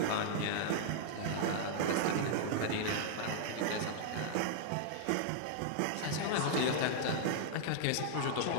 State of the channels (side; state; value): both; different; correlation -0.01